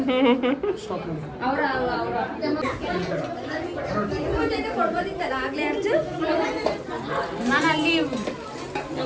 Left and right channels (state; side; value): identical; both; correlation 1.00